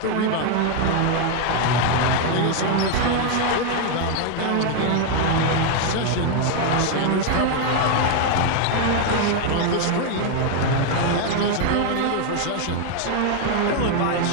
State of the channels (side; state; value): both; different; correlation 0.01